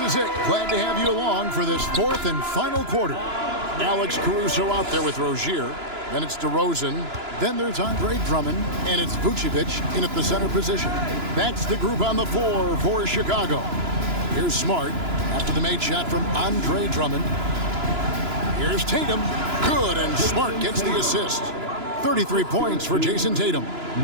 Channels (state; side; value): late; left; 2.9 ms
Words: it. Glad to have you along for this fourth and final quarter. Alex Caruso out there with Rozier. Then it's DeRozan. Then there's Andre Drummond. And it's Vucevic in at the center position. That's the group on the floor for Chicago. Here's Smart after the made shot from Andre Drummond. Here's Tatum. Good, and Smart gets the assist. 33 points for Jason Tatum.